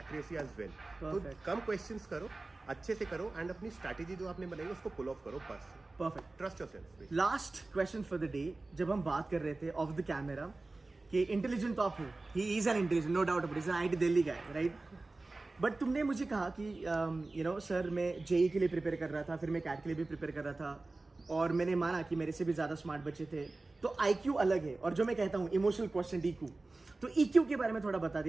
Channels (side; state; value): left; quieter; 3.2 dB